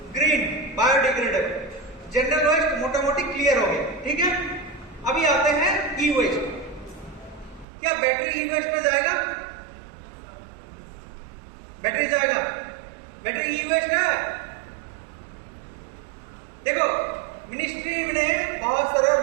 Green, biodegradable. जनरल वेस्ट मोटा मोटी क्लियर हो गया, ठीक है। अभी आते हैं ई वेस्ट। क्या बैटरी ई वेस्ट में जाएगा? बैटरी जाएगा? बैटरी ई वेस्ट है। देखो मिनिस्ट्री ने बहुत सारे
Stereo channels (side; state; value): left; drops out; at 7.7 s